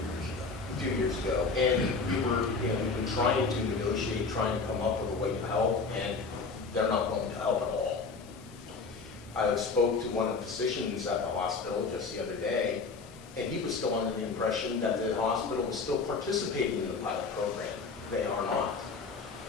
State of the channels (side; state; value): right; quieter; 4.4 dB